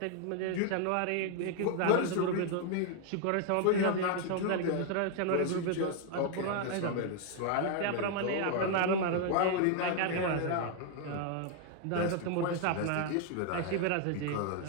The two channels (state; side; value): different; both; correlation 0.00